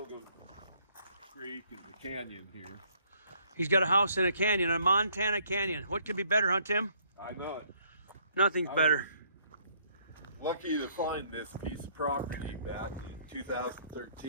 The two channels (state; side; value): inverted; both; correlation -0.65